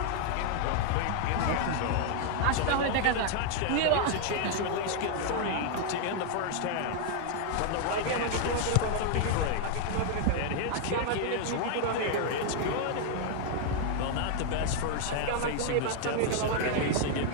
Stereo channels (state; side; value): different; both; correlation 0.00